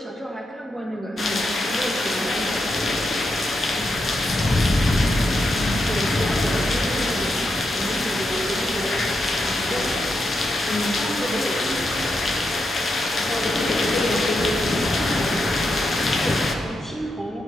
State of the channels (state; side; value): normal; both; correlation 0.84